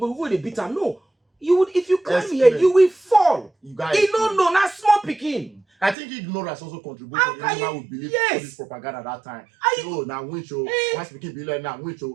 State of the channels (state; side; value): drops out; left; at 6.0 s